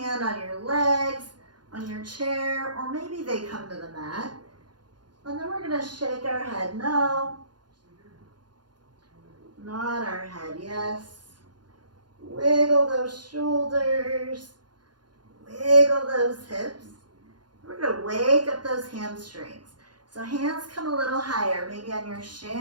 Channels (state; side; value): late; left; 0.70 ms